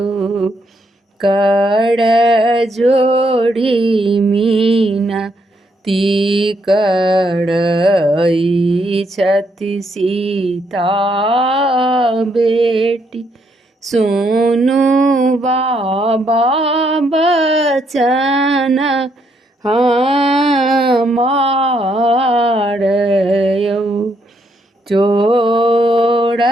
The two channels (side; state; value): both; normal; correlation 0.74